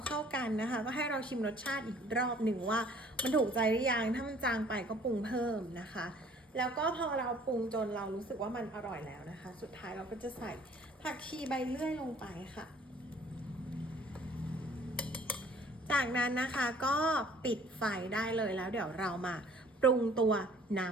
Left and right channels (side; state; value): both; normal; correlation 0.55